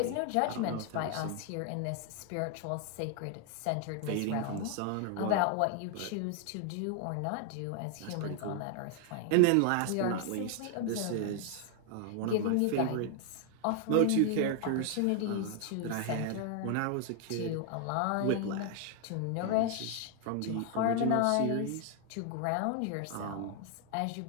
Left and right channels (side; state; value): both; different; correlation 0.00